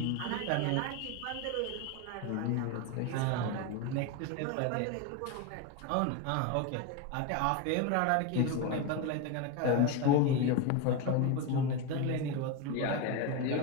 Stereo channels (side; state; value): both; different; correlation 0.03